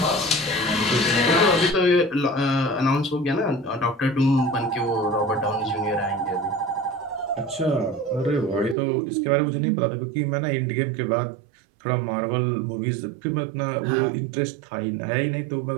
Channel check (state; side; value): drops out; left; at 8.8 s